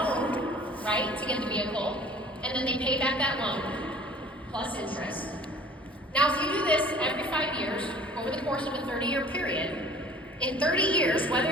right, to get the vehicle, and then they pay back that loan plus interest. Now, if you do this every 5 years over the course of a 30-year period, in 30 years, whether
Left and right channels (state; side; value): normal; both; correlation 0.49